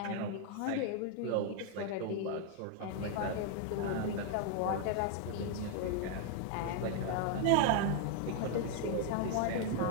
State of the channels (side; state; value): both; different; correlation 0.00